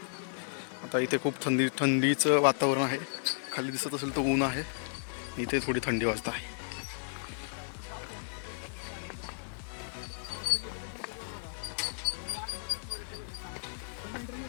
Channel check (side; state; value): right; silent; digital silence